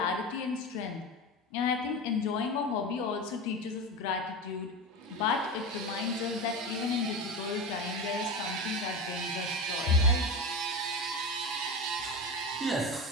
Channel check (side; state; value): both; normal; correlation 0.24